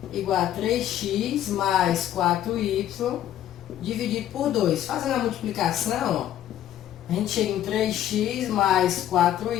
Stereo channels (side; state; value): right; quieter; 11.6 dB